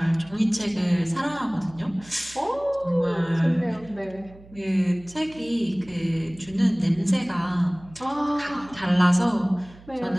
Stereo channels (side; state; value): right; noise; hum, 22 dB below the sound